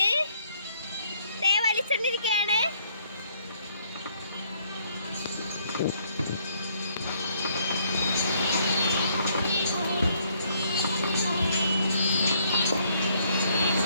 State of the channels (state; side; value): inverted; both; correlation -0.67